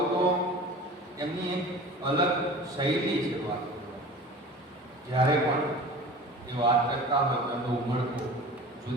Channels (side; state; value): both; normal; correlation 0.38